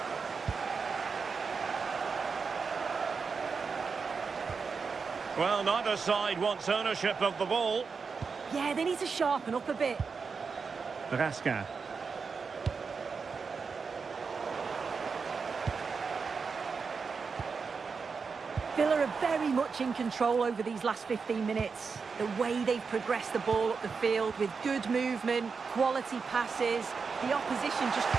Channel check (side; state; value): left; quieter; 5.2 dB